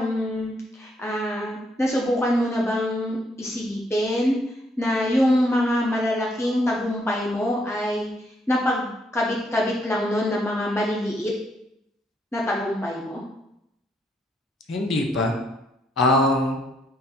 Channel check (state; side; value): normal; both; correlation 0.73